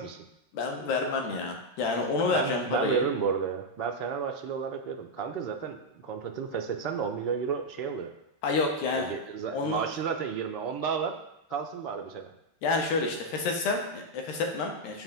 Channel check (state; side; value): late; right; 13 ms